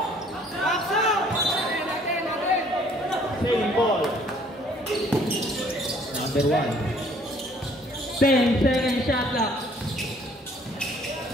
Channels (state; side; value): normal; both; correlation 0.59